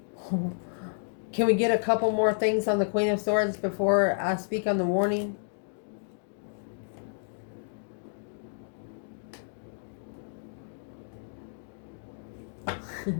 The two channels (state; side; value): silent; right; digital silence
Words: Can we get a couple more things on the Queen of Swords before I speak on the warning?